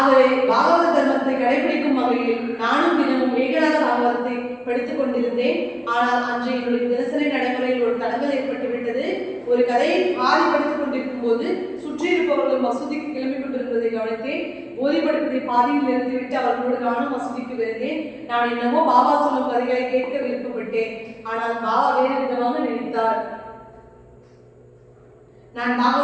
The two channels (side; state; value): both; identical; correlation 1.00